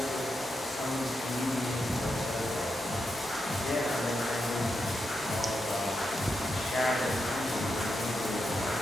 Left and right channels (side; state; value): both; normal; correlation 0.85